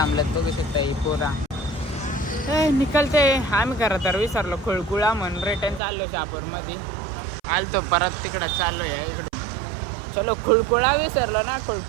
बघू शकता ही पोरा. निकलते आम्ही खरं तर विसरलो खुळकुळा म्हणून रिटर्न चाललो शहापूर मध्ये आलतो परत तिकडं चाललो या इकडे. चलो खुळकुळा विसरलो ना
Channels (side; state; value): left; drops out; at 5.8 s